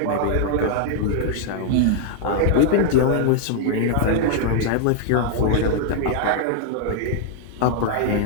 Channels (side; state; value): both; different; correlation 0.00